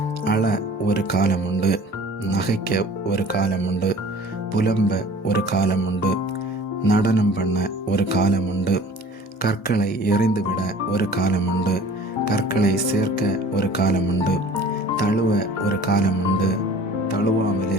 அழ ஒரு காலம் உண்டு, நகைக்க ஒரு காலம் உண்டு, புலம்ப ஒரு காலம் உண்டு, நடனம் பண்ண ஒரு காலம் உண்டு, கற்களை எறிந்துவிட ஒரு காலம் உண்டு, கற்களை சேர்க்க ஒரு காலம் உண்டு, தழுவ ஒரு காலம் உண்டு, தழுவாமல்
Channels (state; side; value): normal; both; correlation 0.46